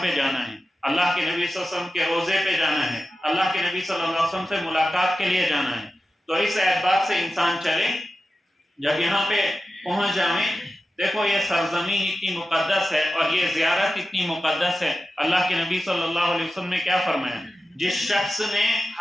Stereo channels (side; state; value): both; normal; correlation 0.93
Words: پہ جانا ہے، اللہ کے نبی صلی اللہ علیہ وسلم کے روزے پہ جانا ہے، اللہ کے نبی صلی اللہ علیہ وسلم سے ملاقات کے لیے جانا ہے۔ تو اس اعتبار سے انسان چلے، جب یہاں پہ پہنچ جائیں، دیکھو یہ سرزمین اتنی مقدس ہے اور یہ زیارت اتنی مقدس ہے، اللہ کے نبی صلی اللہ علیہ وسلم نے کیا فرمایا؟ جس شخص نے